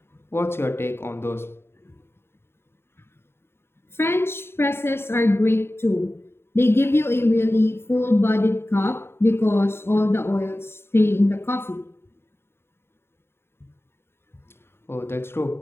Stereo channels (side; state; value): right; late; 0.11 ms